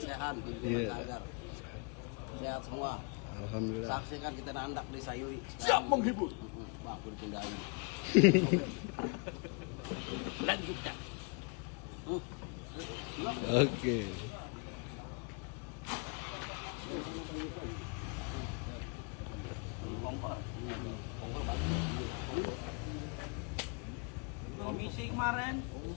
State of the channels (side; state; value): right; quieter; 33.2 dB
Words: Sehan. Iya. Sehat semua. Alhamdulillah. Saksikan kita nandak di Sayui. Siap menghibur. Wah, aku dipindahin. Lanjutkan. Oke. Komisi kemarin.